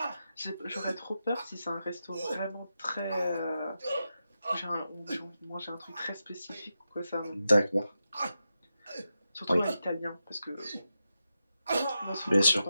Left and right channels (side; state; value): both; inverted; correlation -0.89